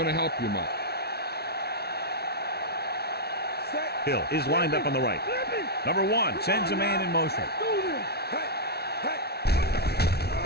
to help you much. Hill is lined up on the right. Number 1 sends a man in motion.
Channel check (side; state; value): right; late; 0.47 ms